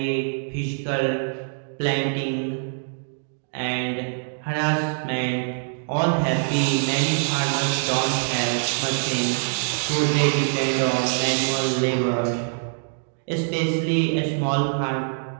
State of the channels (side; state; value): left; silent; digital silence